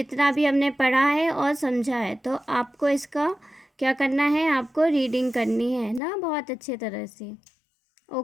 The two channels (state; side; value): drops out; right; at 6.0 s